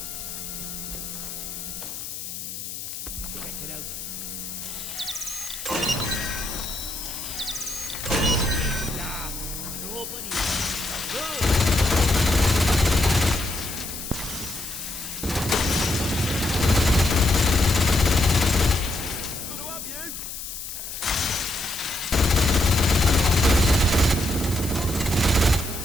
Check it out. Nobody. Go!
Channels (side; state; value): left; noise; hiss, 8 dB below the sound